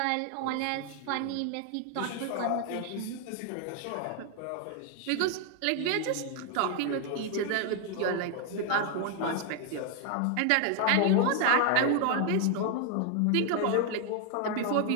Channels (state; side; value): different; both; correlation 0.00